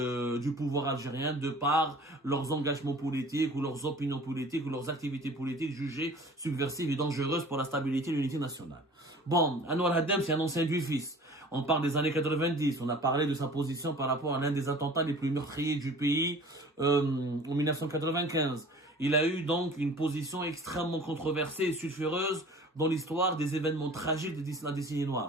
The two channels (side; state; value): both; normal; correlation 0.45